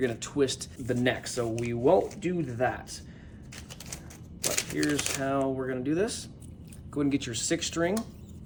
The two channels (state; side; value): identical; both; correlation 1.00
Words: gonna twist the neck, so we won't do that. But here's how we're gonna do this. Go ahead and get your 6th string,